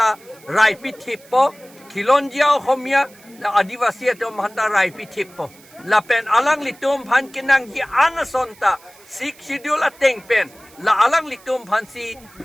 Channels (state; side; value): noise; right; hiss, 25 dB below the sound